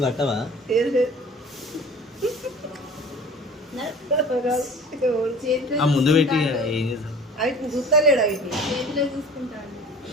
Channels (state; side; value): normal; both; correlation 0.43